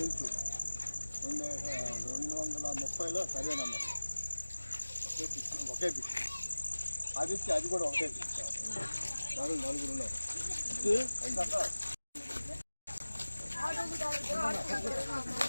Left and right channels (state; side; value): inverted; both; correlation -1.00